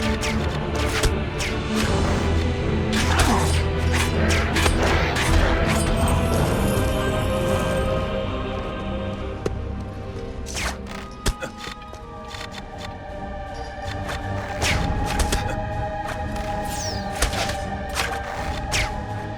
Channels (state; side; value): identical; both; correlation 1.00